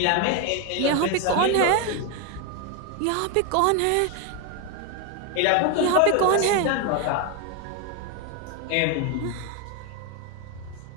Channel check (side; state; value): both; different; correlation 0.02